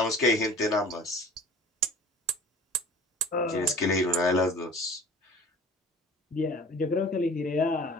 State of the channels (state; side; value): normal; both; correlation 0.44